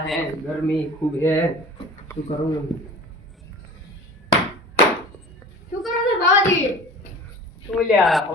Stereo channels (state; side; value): normal; both; correlation 0.40